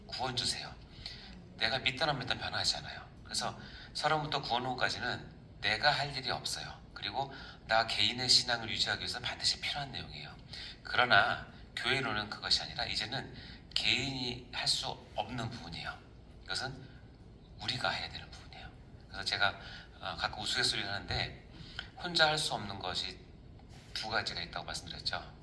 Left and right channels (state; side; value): identical; both; correlation 1.00